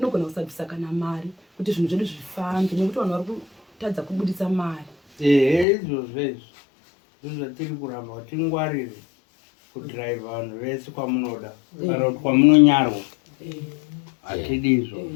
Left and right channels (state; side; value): drops out; right; at 5.7 s